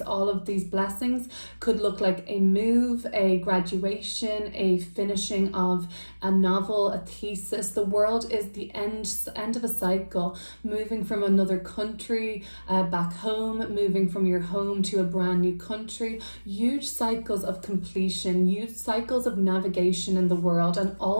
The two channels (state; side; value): inverted; both; correlation -1.00